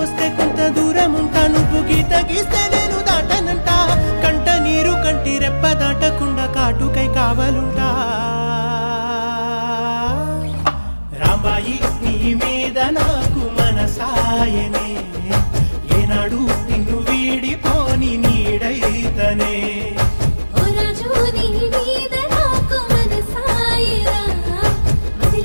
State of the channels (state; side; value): inverted; both; correlation -1.00